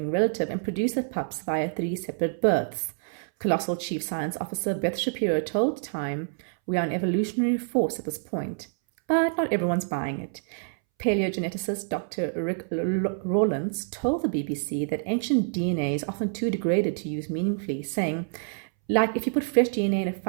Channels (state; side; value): silent; left; 60 dB below the other